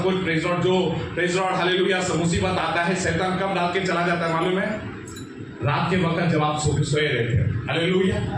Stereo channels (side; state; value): both; identical; correlation 1.00